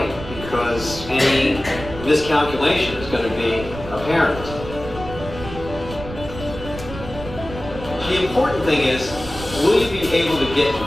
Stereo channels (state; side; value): noise; right; rumble, 11 dB below the sound